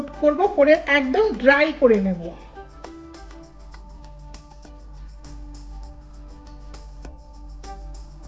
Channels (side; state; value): both; identical; correlation 1.00